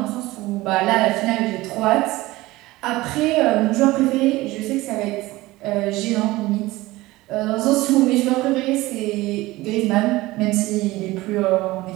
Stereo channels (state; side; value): quieter; left; 19.1 dB